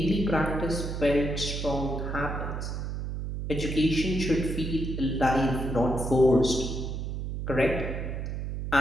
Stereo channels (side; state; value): right; noise; hum, 4 dB below the sound